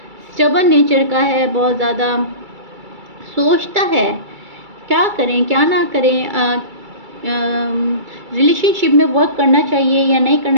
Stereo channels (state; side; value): late; left; 2.3 ms